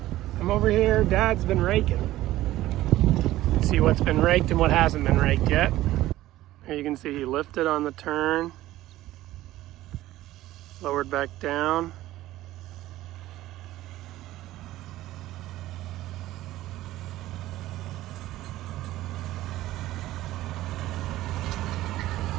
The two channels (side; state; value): left; quieter; 15.5 dB